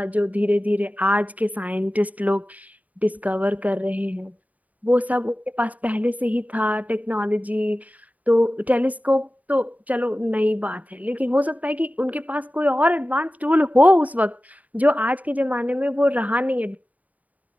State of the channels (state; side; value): late; left; 0.074 ms